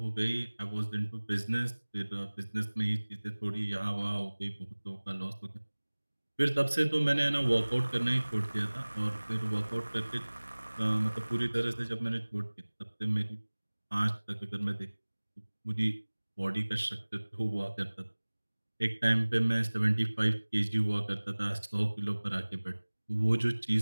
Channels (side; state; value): both; inverted; correlation -1.00